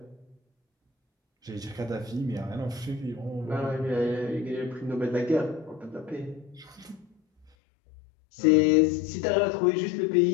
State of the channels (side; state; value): right; drops out; at 7.5 s